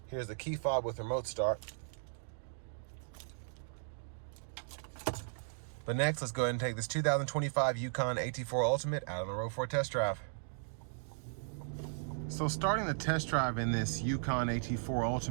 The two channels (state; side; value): silent; left; digital silence